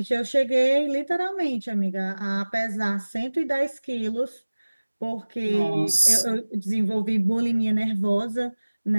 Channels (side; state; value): both; inverted; correlation -1.00